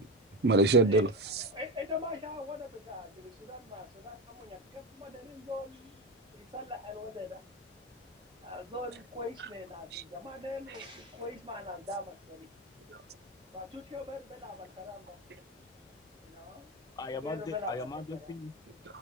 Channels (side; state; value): both; normal; correlation 0.18